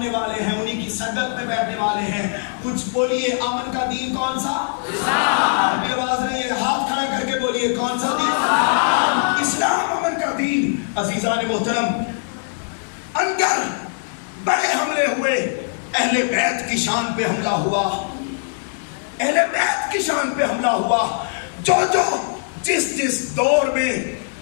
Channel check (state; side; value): silent; right; digital silence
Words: والے ہیں، انہی کی صدق میں بیٹھنے والے ہیں. کچھ بولیے امن کا دین کون سا؟ ابھی آواز نہیں ہے، ہاتھ کھڑا کر کے بولیے کون سا دین؟ اسلام امن کا دین. عزیزان محترم، اندر بڑے حملے ہوئے، اہل بیت کی شان پہ حملہ ہوا، اہل بیت کی شان پہ حملہ ہوا، جو جس دور میں